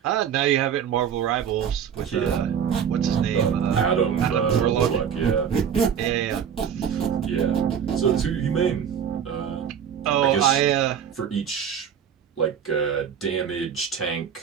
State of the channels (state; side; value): quieter; left; 8.1 dB